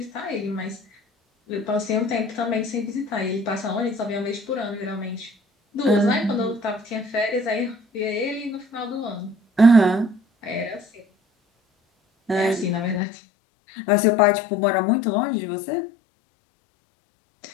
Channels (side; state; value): right; drops out; at 13.0 s